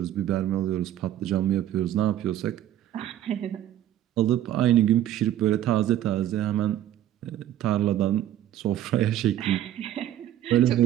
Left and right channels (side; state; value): left; quieter; 12.1 dB